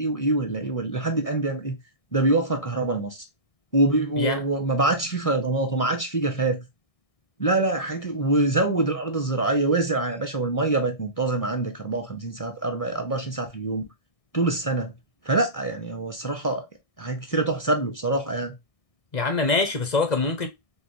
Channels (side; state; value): right; late; 1.6 ms